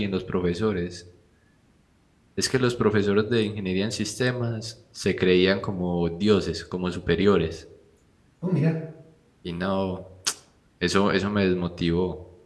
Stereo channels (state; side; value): identical; both; correlation 1.00